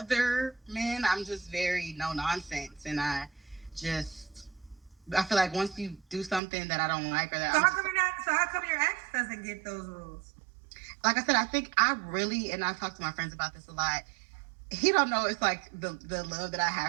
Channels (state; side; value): drops out; left; at 6.4 s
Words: men, I'm just very no nonsense, and just I feel like once you do something that I don't like or that So I'm how just, come you're not? So how come your ex doesn't get those rules? like I said, I think I really, and I've talked to my friends about this a lot. He don't know it's like the love that I